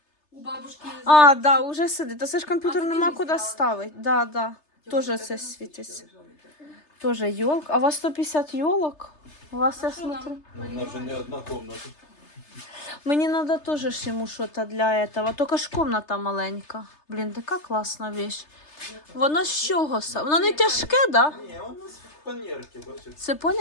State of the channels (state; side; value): late; right; 3.3 ms